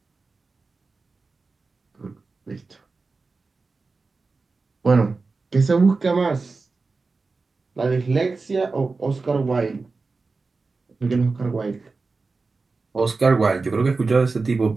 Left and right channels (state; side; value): quieter; left; 4.0 dB